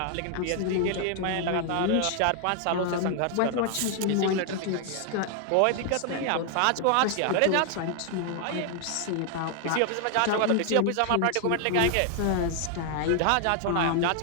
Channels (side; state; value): both; different; correlation 0.00